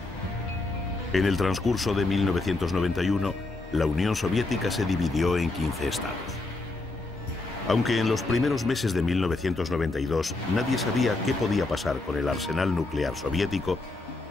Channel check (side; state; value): right; quieter; 3.1 dB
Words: En el transcurso de 1991, la Unión Soviética se dividió en 15 estados. Aunque en los primeros meses de 1992 nadie sabía qué podía pasar con el arsenal nuclear soviético,